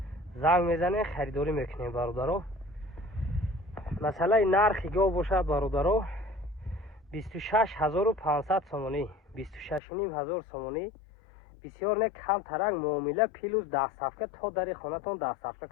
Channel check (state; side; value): drops out; right; at 9.8 s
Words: زنگ میزنه خریداری میکنین برادرو. مثلا نرخ گو باشد برادرو 26,500 سومانی 26,500 سومانی. بسیار نه کم ترک معامله پیلوز 10 صفحه تا در خانه‌تون 10 صفحه